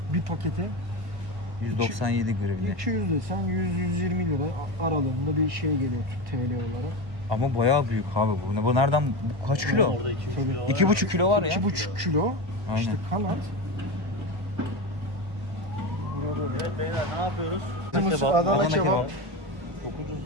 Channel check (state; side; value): late; left; 1.5 ms